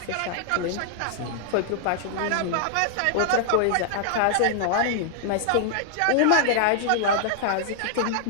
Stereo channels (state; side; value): different; both; correlation -0.01